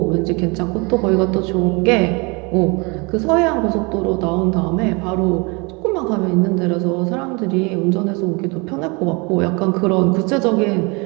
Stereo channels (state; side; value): quieter; left; 29.3 dB